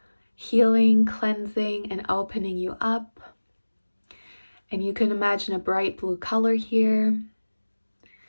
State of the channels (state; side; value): inverted; both; correlation -1.00